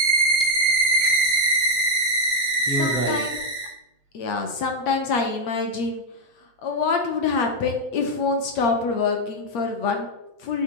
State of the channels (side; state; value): right; late; 8.5 ms